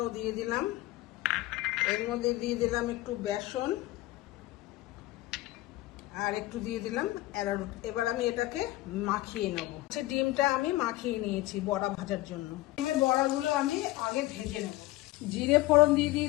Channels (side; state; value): right; quieter; 17.9 dB